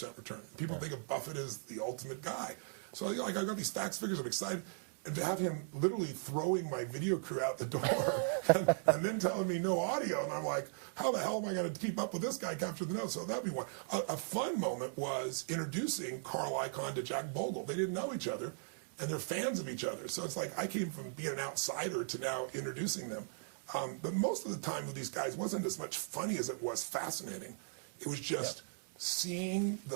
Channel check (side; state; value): left; silent; digital silence